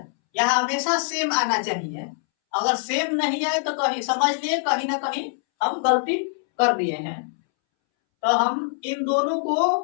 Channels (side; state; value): right; silent; 63 dB below the other